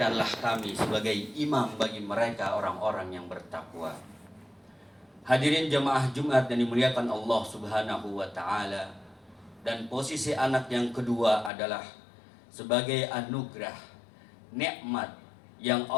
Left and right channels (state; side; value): drops out; right; at 11.5 s